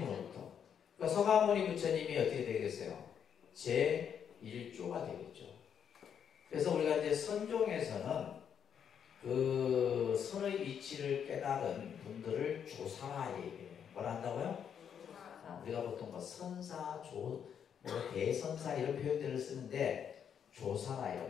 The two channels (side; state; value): right; quieter; 8.1 dB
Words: 그러니까 서가모니 부처님이 어떻게 되겠어요? 제1조가 되겠죠. 그래서 우리가 이제 선종에서는 그 선의 이치를 깨달은 분들을 조사라 얘기해요. 뭐라 한다고요? 우리가 보통 뭐 선사, 대선사 이런 표현들을 쓰는데 조사라